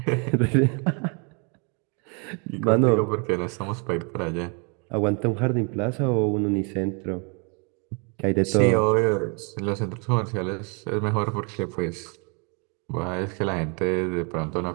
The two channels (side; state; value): left; quieter; 35.0 dB